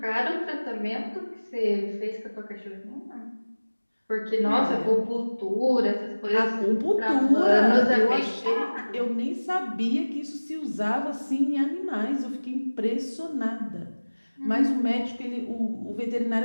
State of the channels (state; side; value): inverted; both; correlation -1.00